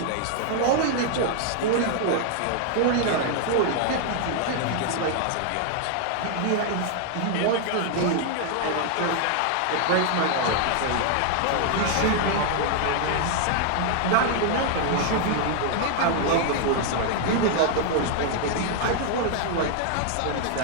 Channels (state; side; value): different; both; correlation 0.00